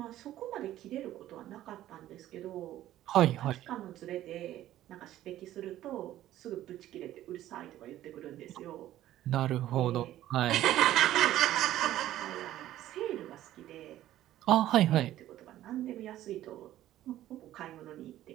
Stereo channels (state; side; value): quieter; left; 13.5 dB